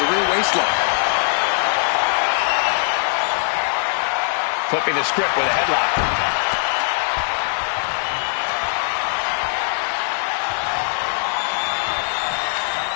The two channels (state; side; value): silent; right; digital silence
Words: rear waistlock. Flipping the script with a headlock.